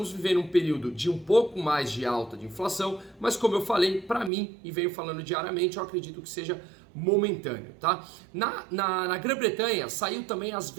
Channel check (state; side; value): drops out; left; at 4.3 s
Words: vivendo um período de um pouco mais de alta de inflação, mas como eu falei, para mim, e venho falando diariamente, eu acredito que seja momentâneo, tá? Na Grã-Bretanha saiu também as